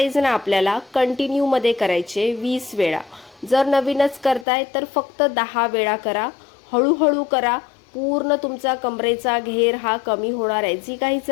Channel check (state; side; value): drops out; right; at 4.5 s